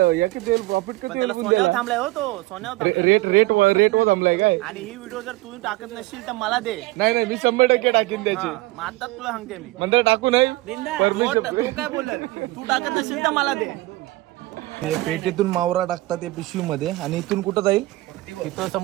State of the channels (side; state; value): left; quieter; 20.0 dB